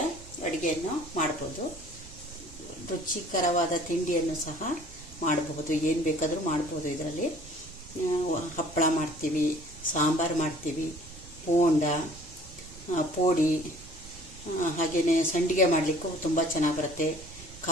ಅಡುಗೆಯನ್ನು ಮಾಡ್ಬೋದು. ರುಚಿಕರವಾದ ತಿಂಡಿಯನ್ನು ಸಹ ಮಾಡಬಹುದು, ಏನು ಬೇಕಾದರೂ ಮಾಡ್ಬೋದು. ಇದರಲ್ಲಿ ಹಪ್ಪಳ ಮಾಡ್ತೀವಿ, ಸಾಂಬಾರು ಮಾಡ್ತೀವಿ, ಬೋಂಡ, ಪೋಡಿ, ಹಾಗೆಯೇ ಸಂಡಿಗೆ ಮಾಡಲಿಕ್ಕೂ ತುಂಬ ಚೆನ್ನಾಗಿ ಬರುತ್ತೆ.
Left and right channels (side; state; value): right; noise; rumble, 18 dB below the sound